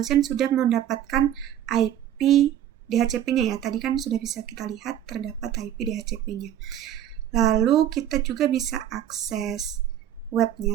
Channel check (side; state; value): left; quieter; 10.9 dB